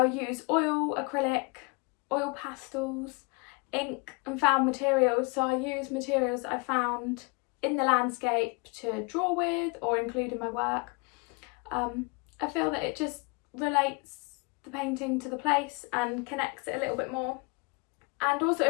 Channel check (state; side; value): quieter; right; 30.5 dB